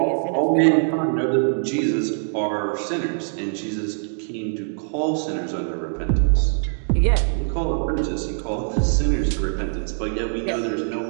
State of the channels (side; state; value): left; silent; digital silence